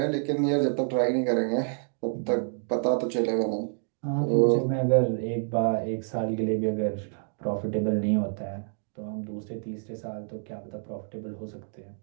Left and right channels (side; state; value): left; silent; 59 dB below the other